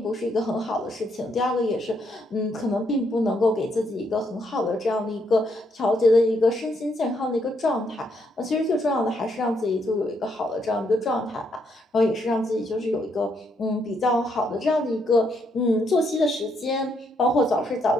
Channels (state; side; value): normal; both; correlation 0.75